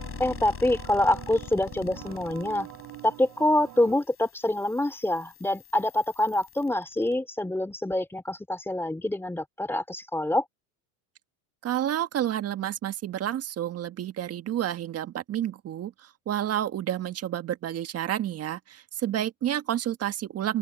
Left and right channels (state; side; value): normal; both; correlation 0.66